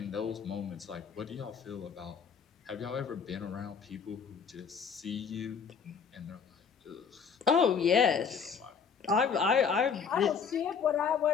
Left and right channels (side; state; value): right; quieter; 6.3 dB